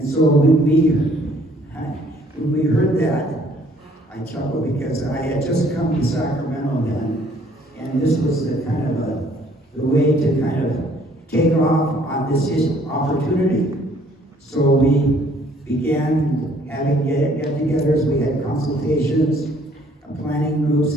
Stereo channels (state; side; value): normal; both; correlation 0.61